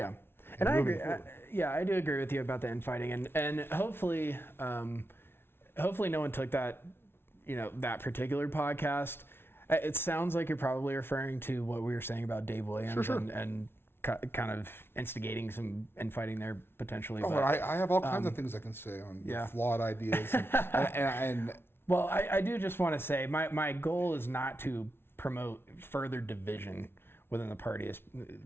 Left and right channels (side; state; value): right; late; 0.11 ms